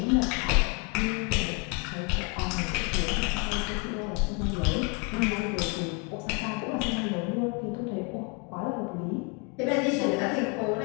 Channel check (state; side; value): quieter; right; 31.8 dB